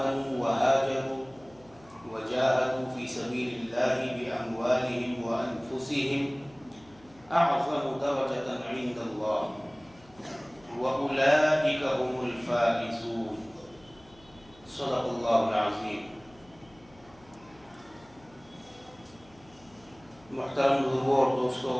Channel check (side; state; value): left; noise; hum, 27 dB below the sound